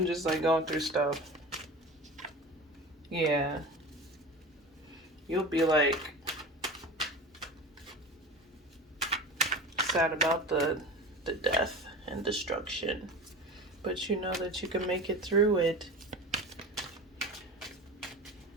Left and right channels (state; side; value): normal; both; correlation 0.32